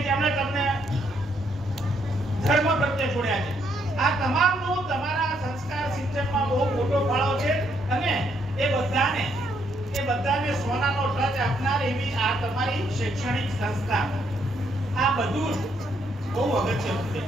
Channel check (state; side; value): normal; both; correlation 0.73